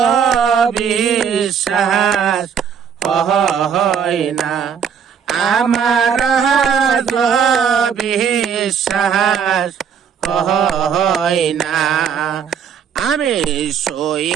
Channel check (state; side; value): quieter; left; 7.4 dB